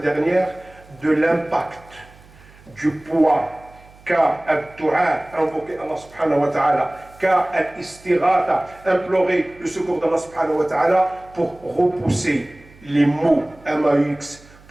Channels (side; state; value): right; noise; hum, 25 dB below the sound